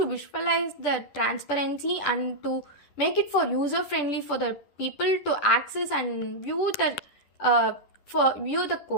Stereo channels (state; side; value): late; right; 10 ms